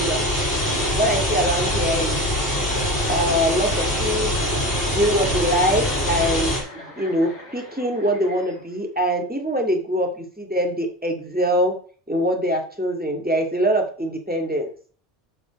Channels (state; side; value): normal; both; correlation 0.30